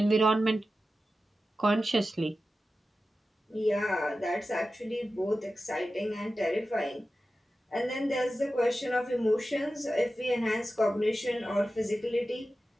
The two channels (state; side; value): normal; both; correlation 0.93